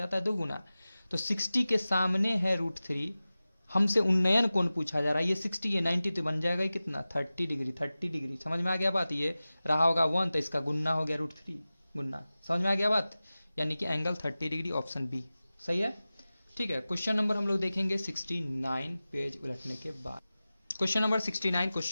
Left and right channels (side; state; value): both; inverted; correlation -0.96